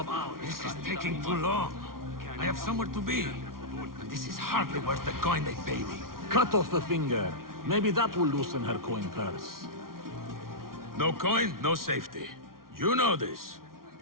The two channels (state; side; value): late; left; 0.92 ms